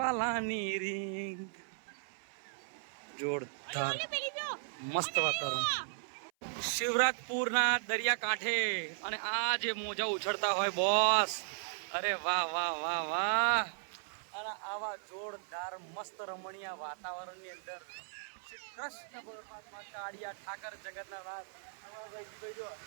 રીંગ. જોરદાર મસ્ત વાતાવરણ શિવરાજપુરના દરિયા કાંઠે. અને આ જે મોજા ઉછળતા હોય બોસ, અરે વાહ. અને આવા જોરદાર મસ્ત રમણીય વાતાવરણની અંદર શ્રી કૃષ્ણ પરમાત્મા કાળિયા ઠાકર જગતના નાથ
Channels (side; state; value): left; silent; 53 dB below the other